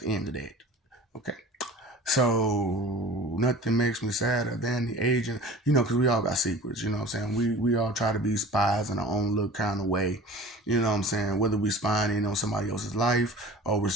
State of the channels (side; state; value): both; normal; correlation 0.41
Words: end of that. Okay. So nothing makes me sadder than the agent, because we all got secrets, you know what I'm saying? We all try to be spies in our own little kind of way, you know what I'm saying? Whether we spying in on somebody else's life or